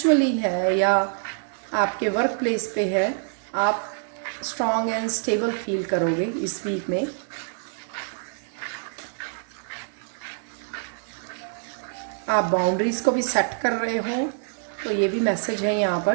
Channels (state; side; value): silent; left; digital silence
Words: है या आपके वर्क प्लेस पे है, आप स्ट्रॉन्ग एंड स्टेबल फील करोगे इस वीक में। आप बाउंड्रीज़ को भी सेट कर रहे हो, तो ये भी मैसेज है यहाँ